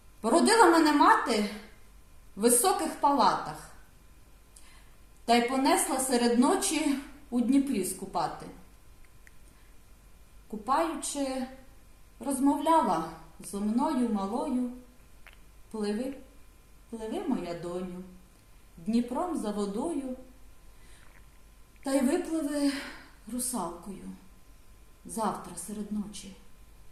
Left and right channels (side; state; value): both; identical; correlation 1.00